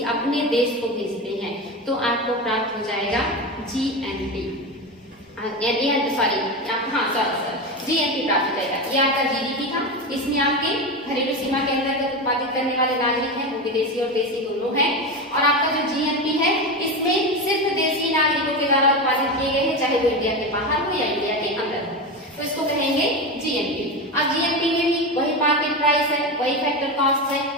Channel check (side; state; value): both; normal; correlation 0.19